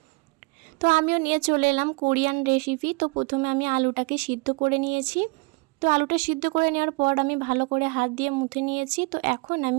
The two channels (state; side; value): quieter; left; 28.7 dB